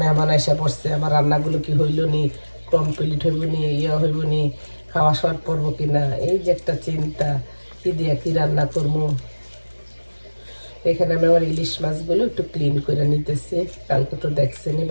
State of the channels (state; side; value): inverted; both; correlation -1.00